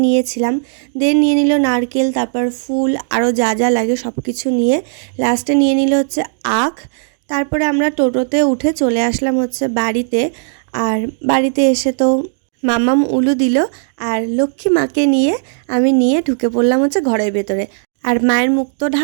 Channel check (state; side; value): silent; left; digital silence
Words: নিয়েছিলাম। দেন নিয়ে নিল নারকেল, তারপর ফুল, আরও যা যা লাগে সব কিছু নিয়ে লাস্টে নিয়ে নিল হচ্ছে আখ। তারপরে আমরা টোটোতে উঠে চলে আসলাম হচ্ছে বাড়িতে। আর বাড়িতে এসে তো মামাম উলু দিল, আর লক্ষ্মী মাকে নিয়ে আমি নিয়ে ঢুকে পড়লাম হচ্ছে ঘরের ভেতরে। আর মায়ের মুখ তো